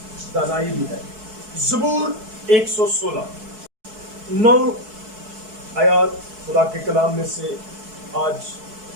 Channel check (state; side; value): late; left; 4.6 ms